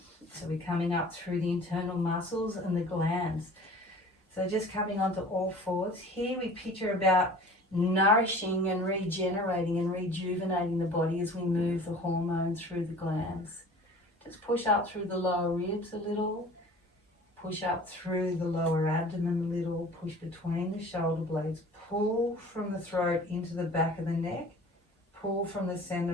So we're coming up through the internal muscles and the glands. So just coming onto all fours. Here we picture about nourishing and regenerating and rejuvenating the body as we move the hormones through the glands. Just push up through the lower ribs a little. Push up through the lower abdomen a little. Push between the shoulder blades. Pull from the throat into the back of the neck. Pull from the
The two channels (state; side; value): normal; both; correlation 0.44